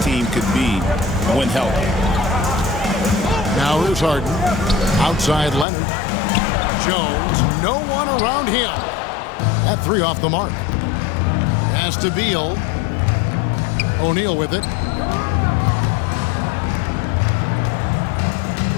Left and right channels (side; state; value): right; drops out; at 5.7 s